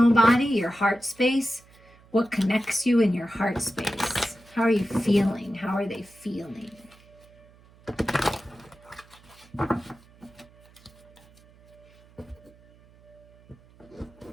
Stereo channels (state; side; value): noise; right; hum, 27 dB below the sound